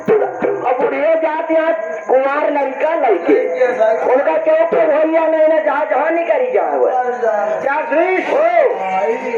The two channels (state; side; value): identical; both; correlation 1.00